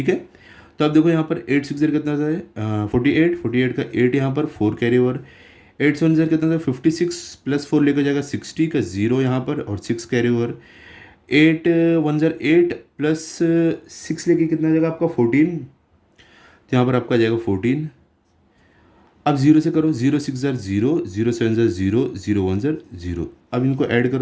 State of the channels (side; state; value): both; identical; correlation 1.00